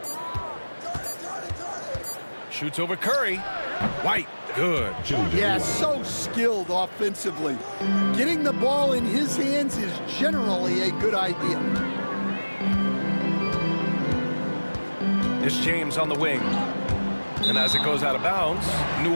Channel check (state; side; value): inverted; both; correlation -1.00